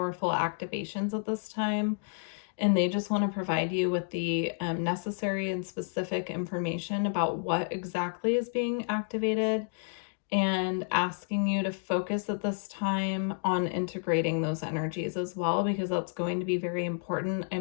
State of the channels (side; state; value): right; silent; digital silence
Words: activations at this time. And they just want to provide you with the necessary and specific information about what exactly is being activated and asking you to focus at this time on integrating those energies as well, because that's going to be very important.